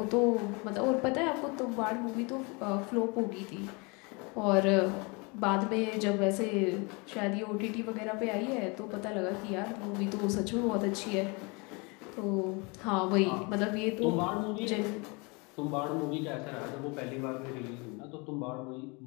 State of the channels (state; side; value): quieter; right; 29.7 dB